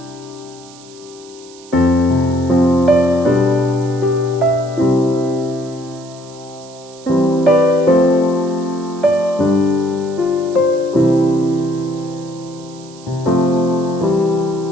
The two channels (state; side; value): noise; right; hiss, 22 dB below the sound